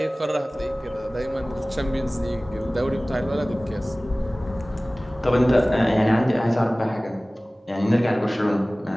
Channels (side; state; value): both; normal; correlation 0.98